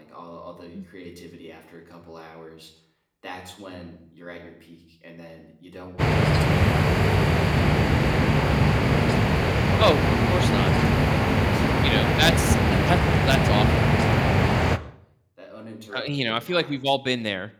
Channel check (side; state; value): both; identical; correlation 1.00